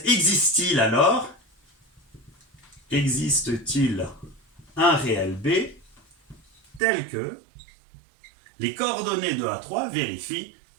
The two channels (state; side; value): drops out; left; at 6.8 s